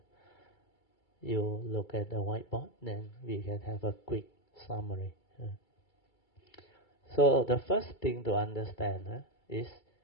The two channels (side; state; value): right; late; 2.3 ms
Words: You look at the whiteboard, then we can have a quick summary. So the first thing to understand is